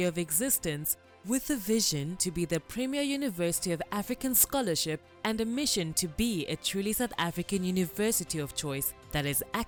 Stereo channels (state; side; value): identical; both; correlation 1.00